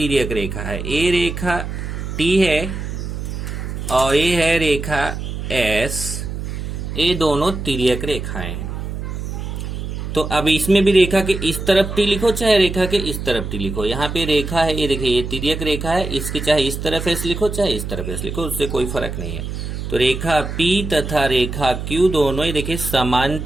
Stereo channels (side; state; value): right; noise; hum, 6 dB below the sound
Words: रेखा है। ये रेखा T है और ये है रेखा S, ये दोनों तिर्यक रेखाएं हैं। तो अब इसमें भी रेखा के इस तरफ T लिखो चाहे रेखा के इस तरफ T लिखो। यहाँ पे रेखा है, ये देखिए ये तिर्यक रेखा है, इसके चाहे इस तरफ S लिखो चाहे इस तरफ S लिखो, उससे कोई फर्क नहीं है। तो रेखा P तथा रेखा Q दोनों ही देखिए